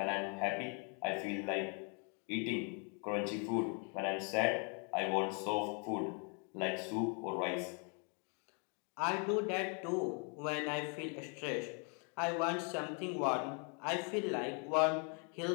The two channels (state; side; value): quieter; right; 37.6 dB